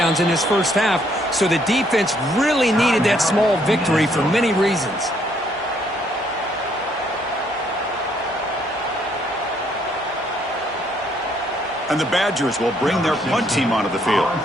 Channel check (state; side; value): normal; both; correlation 0.68